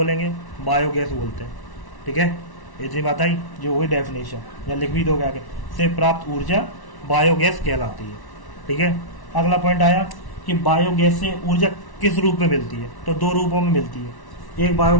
बायोगैस बोलते हैं, ठीक है। इतनी बात आई, जो हुई डेफिनेशन, या लिख भी दोगे आगे, से प्राप्त ऊर्जा बायोगैस कहलाती है, ठीक है। अगला पॉइंट आया कि बायोगैस से ऊर्जा किस रूप में मिलती है? तो 2 रूपों में मिलती है। एक,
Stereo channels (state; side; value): late; right; 1.1 ms